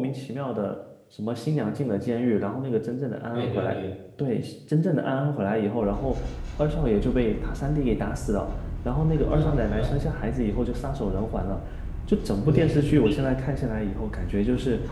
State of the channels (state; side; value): identical; both; correlation 1.00